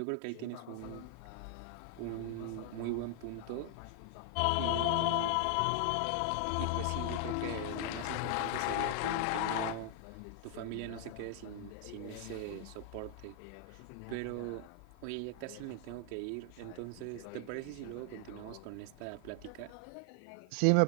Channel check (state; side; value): different; both; correlation 0.00